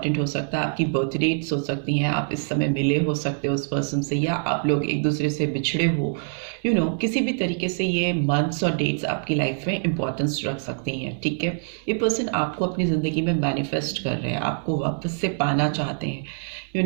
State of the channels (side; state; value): left; silent; 62 dB below the other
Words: हो सकता है। आपकी बर्थ डेट्स हो सकती हैं, आप इस समय मिले हो सकते हो उस पर्सन से, या आप लोग एक दूसरे से बिछड़े हो, किसी भी तरीके से ये मंथ्स और डेट्स आपकी लाइफ में इंपॉर्टेंस रख सकती हैं। ठीक है, ये पर्सन आपको अपनी ज़िंदगी में मैनिफेस्ट कर रहे हैं, आपको वापस से पाना चाहते हैं।